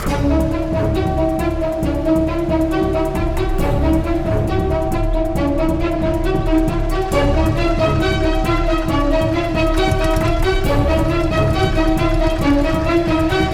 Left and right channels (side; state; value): both; identical; correlation 1.00